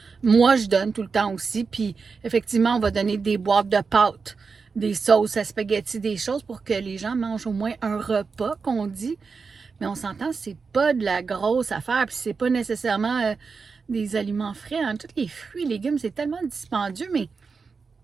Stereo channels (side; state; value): left; quieter; 5.0 dB